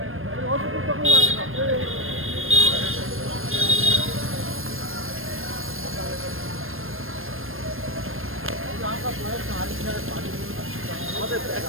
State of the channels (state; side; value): late; left; 0.60 ms